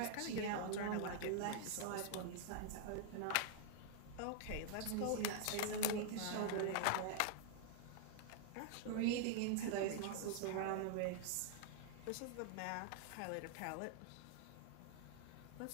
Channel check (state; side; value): different; both; correlation -0.01